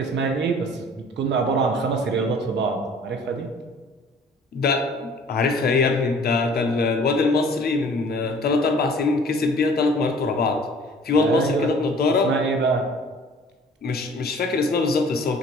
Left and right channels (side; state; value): both; normal; correlation 0.51